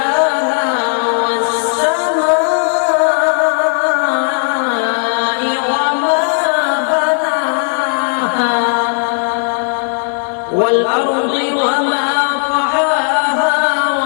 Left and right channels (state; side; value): silent; right; 62 dB below the other